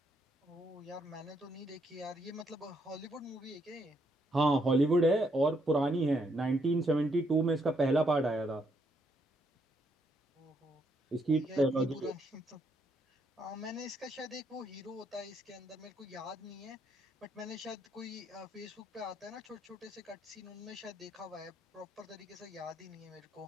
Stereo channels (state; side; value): normal; both; correlation 0.74